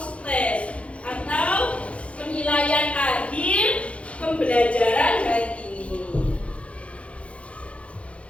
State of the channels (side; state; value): right; late; 0.062 ms